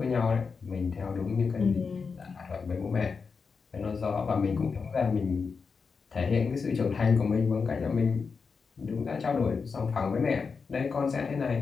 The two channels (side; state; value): right; quieter; 5.2 dB